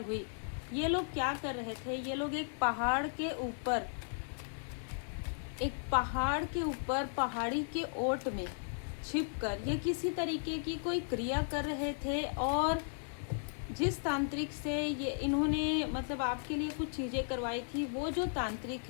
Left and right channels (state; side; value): silent; right; digital silence